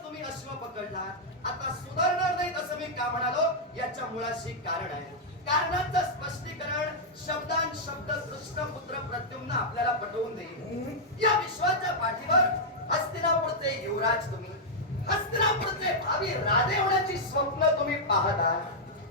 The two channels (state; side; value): normal; both; correlation -0.05